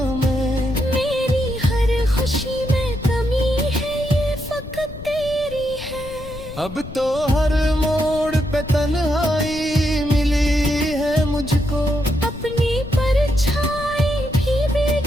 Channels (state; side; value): noise; left; rumble, 13 dB below the sound